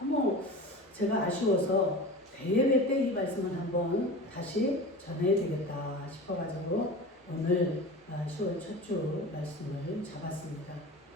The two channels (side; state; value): both; normal; correlation 0.33